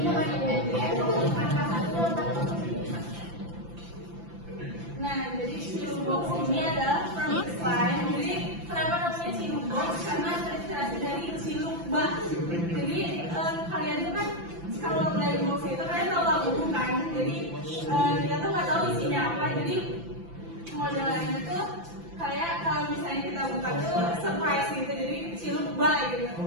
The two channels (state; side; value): late; left; 5.9 ms